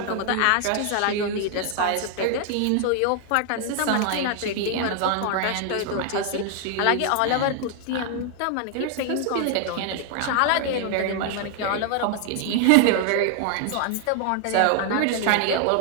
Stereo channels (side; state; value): both; different; correlation 0.00